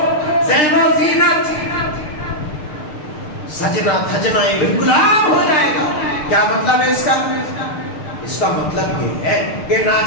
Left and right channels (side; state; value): right; late; 6.6 ms